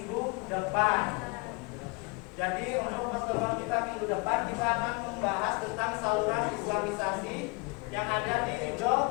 depan. Jadi untuk pertemuan kita minggu depan kita akan membahas tentang saluran Islamisasi yang ada di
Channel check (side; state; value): right; quieter; 28.7 dB